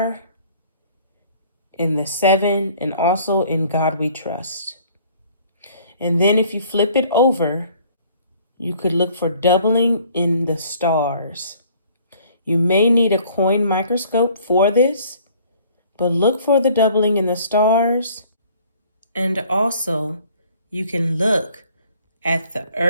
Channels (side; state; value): both; inverted; correlation -0.56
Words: in the 7, and also in God We Trust. And then if you flip it over, you could look for doubling in the stars. You may need a coin microscope for this, but look for the doubling in the stars. And also, you can look at the